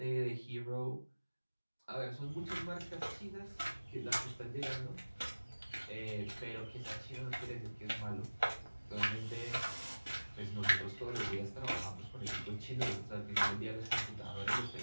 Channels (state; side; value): inverted; both; correlation -1.00